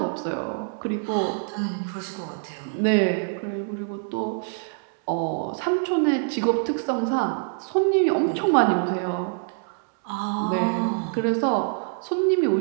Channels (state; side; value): silent; left; 62 dB below the other